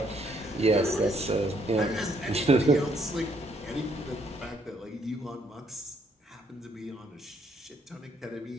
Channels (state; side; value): normal; both; correlation 0.69